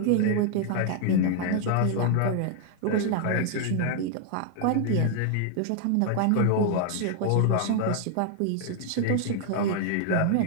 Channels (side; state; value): both; different; correlation 0.00